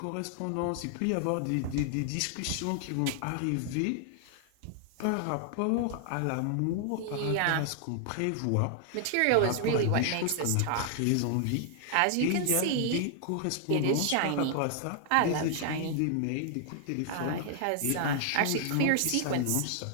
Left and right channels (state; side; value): different; both; correlation 0.00